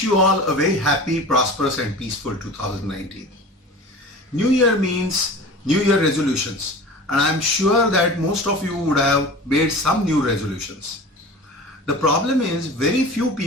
you all a very happy, prosperous and peaceful 2019. New Year means New Year resolutions, and I'm sure that most of you would have made some new resolutions. The problem is very few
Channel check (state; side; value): normal; both; correlation 0.37